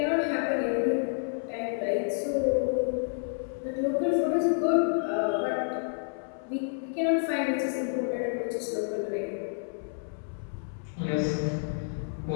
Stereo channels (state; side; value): silent; right; 58 dB below the other